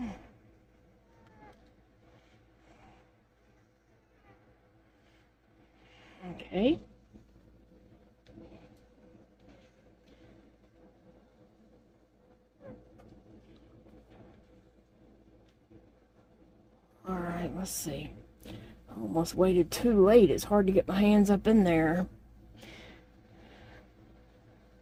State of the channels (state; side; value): identical; both; correlation 1.00